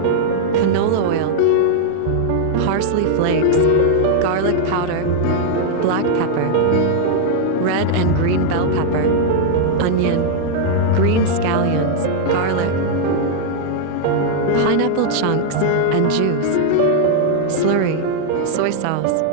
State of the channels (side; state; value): both; different; correlation -0.01